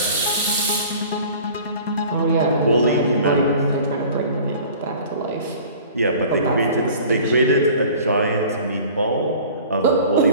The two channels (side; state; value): both; inverted; correlation -0.45